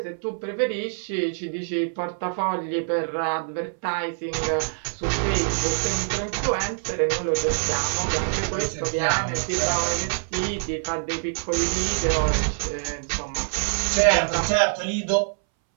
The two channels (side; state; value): left; silent; 62 dB below the other